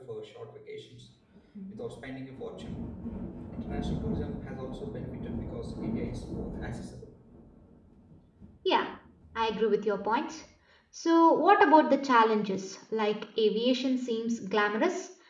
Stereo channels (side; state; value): both; identical; correlation 1.00